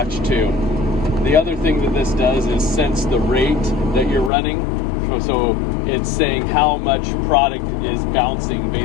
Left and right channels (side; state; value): right; drops out; at 4.3 s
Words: too. The other thing that this does is sense the rate that you're running. So it's saying how much product is bouncing,